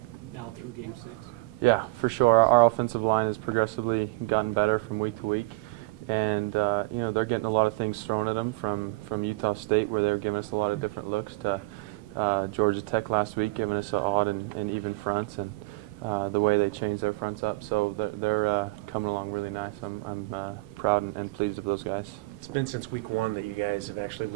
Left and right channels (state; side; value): quieter; left; 24.5 dB